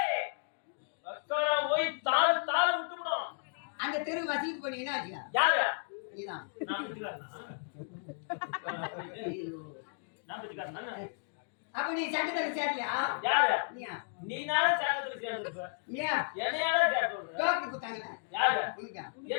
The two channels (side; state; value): right; silent; digital silence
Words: போய் தாள் தாள் விட்டுவிடும். அந்த தெரு வசதிக்கு பண்ணி என்ன ஆச்சியா? யாரு? நீதான். அப்ப நீ சட்டத்துல சேரலையா? யாரு? நீயா? நீனால சட்டத்துல சேர்ந்துருப்ப. நீயா? என்னையால சேர்ந்துருப்ப. டோக்கி குத்தாங்க. யாரு? உனக்கா?